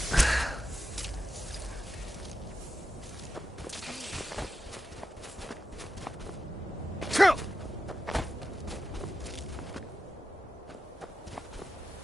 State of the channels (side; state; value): both; normal; correlation 0.90